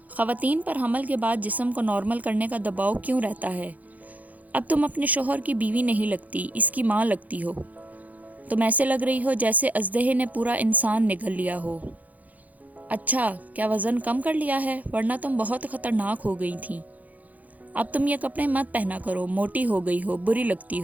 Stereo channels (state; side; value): late; left; 0.078 ms